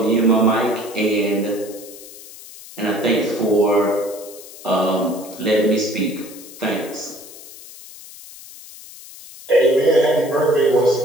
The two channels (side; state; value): left; noise; hiss, 17 dB below the sound